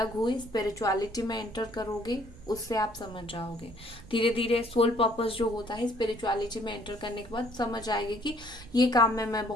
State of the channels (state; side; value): noise; right; rumble, 18 dB below the sound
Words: हुए, स्पिरिचुअलिटी में एंटर करोगे, उससे आप समझ जाओगे। धीरे धीरे सोल पर्पस जो होता है, स्पिरिचुअलिटी में एंटर करने के बाद समझ आएगी कि ये काम में मैं